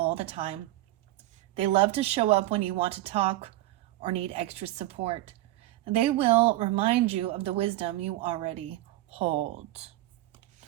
the time. They love to show up when you want to talk or need extra support. They will remind you of the wisdom you already hold.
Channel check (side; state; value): left; quieter; 16.4 dB